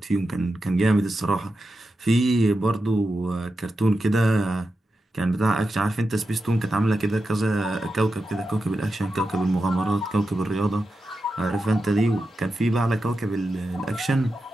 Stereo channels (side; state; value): both; normal; correlation 0.90